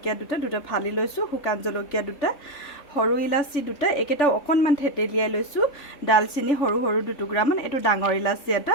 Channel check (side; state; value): right; late; 3.4 ms